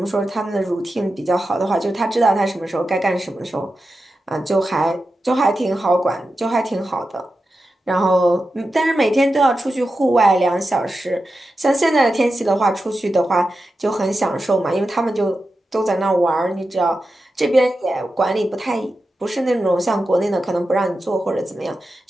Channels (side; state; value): both; normal; correlation 0.91